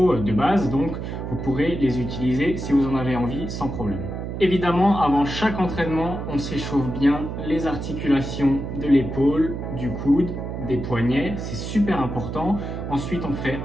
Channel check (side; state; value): right; noise; hum, 6 dB below the sound